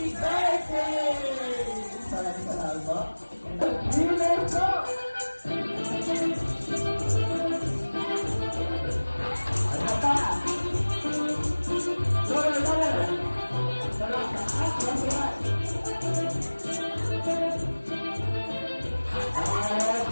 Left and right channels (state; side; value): inverted; both; correlation -1.00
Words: birthday! Maraming salamat po. Let's go! Ano pa?